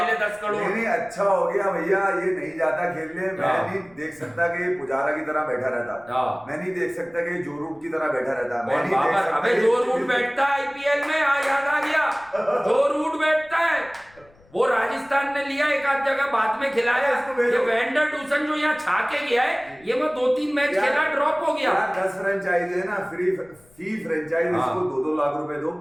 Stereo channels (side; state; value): left; noise; rumble, 29 dB below the sound